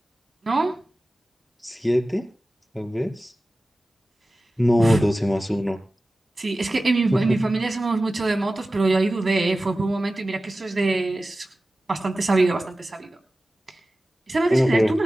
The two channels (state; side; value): normal; both; correlation 0.96